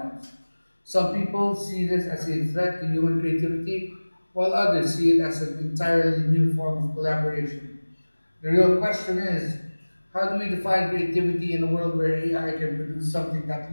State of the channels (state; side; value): inverted; both; correlation -1.00